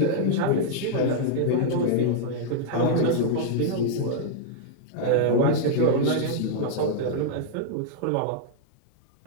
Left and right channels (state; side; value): different; both; correlation -0.01